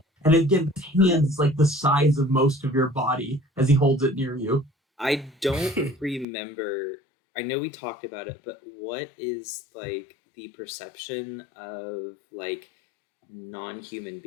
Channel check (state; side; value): drops out; right; at 6.2 s